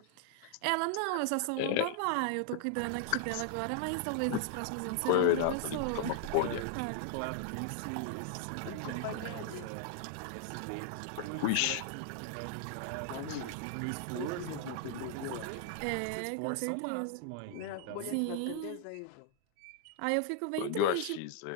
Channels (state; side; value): different; both; correlation 0.00